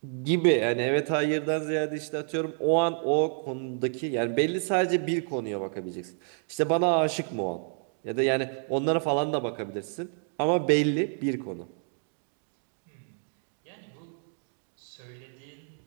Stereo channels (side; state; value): left; silent; 59 dB below the other